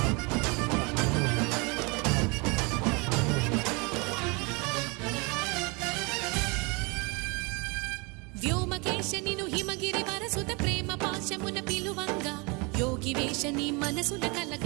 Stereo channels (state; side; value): quieter; left; 29.2 dB